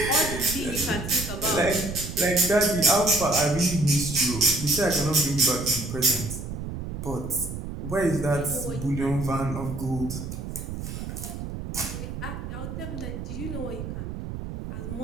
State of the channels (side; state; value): right; noise; rumble, 7 dB below the sound